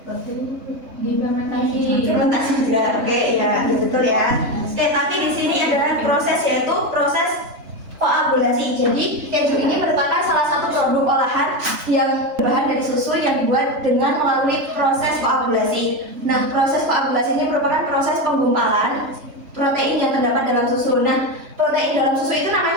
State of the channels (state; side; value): late; left; 3.4 ms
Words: Difermentasi. Fermentasi juga. Oke, ya betul ya. Oke, tapi di sini adalah proses yaitu proses koagulasi. Jadi keju ini merupakan salah satu produk olahan yang berbahan dari susu yang dibuat dengan melalui proses koagulasi. Nah, proses koagulasi ini merupakan proses penggumpalan protein yang terdapat dalam susu. Nah, protein dalam susu itu